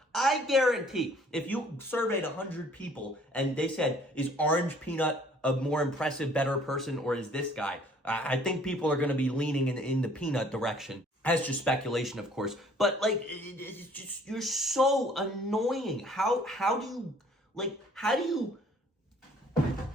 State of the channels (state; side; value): normal; both; correlation 0.57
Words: I guarantee, if you surveyed 100 people and they said, is Orange Peanut a more impressive, better person, or is this guy? I think people are going to be leaning in the Peanut direction. That's just speculation, of course. But, like, it's just, you're so annoying. How do you